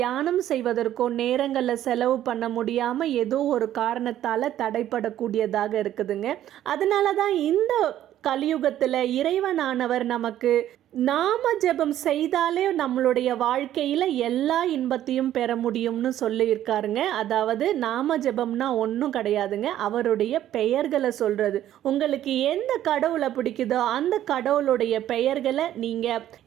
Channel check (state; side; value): quieter; left; 12.2 dB